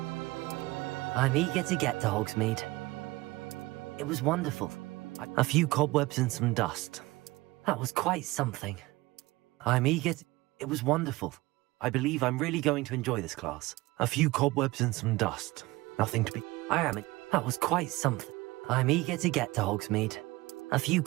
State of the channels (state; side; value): quieter; left; 20.6 dB